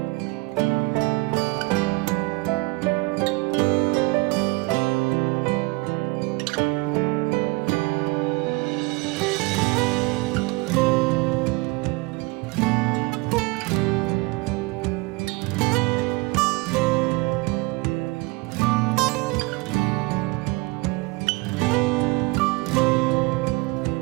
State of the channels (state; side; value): quieter; left; 24.8 dB